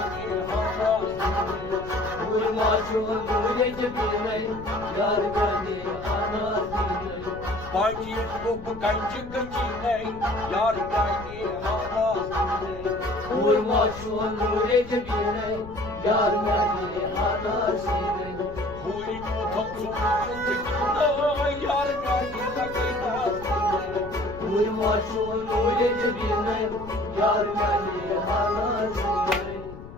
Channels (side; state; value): left; noise; rumble, 14 dB below the sound